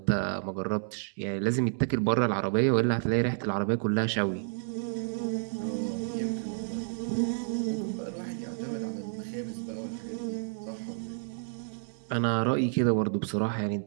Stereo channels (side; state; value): left; silent; digital silence